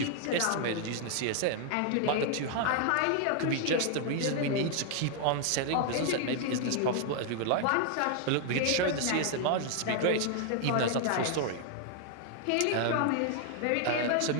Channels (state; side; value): different; both; correlation 0.00